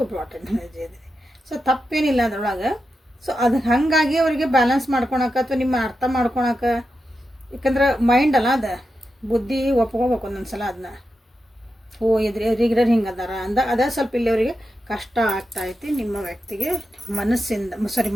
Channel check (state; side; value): normal; both; correlation 0.89